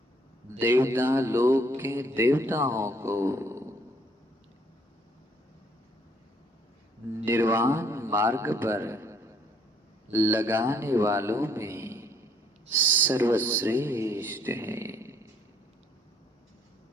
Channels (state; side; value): normal; both; correlation 0.64